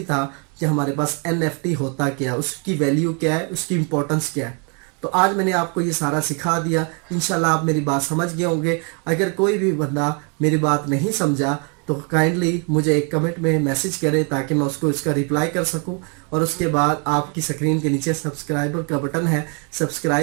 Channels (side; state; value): left; quieter; 36.8 dB